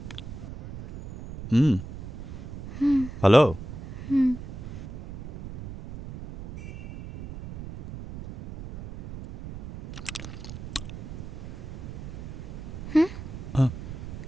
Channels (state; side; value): noise; right; rumble, 11 dB below the sound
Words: হুম, হুম ভালো। হুম হুম হ্যাঁ,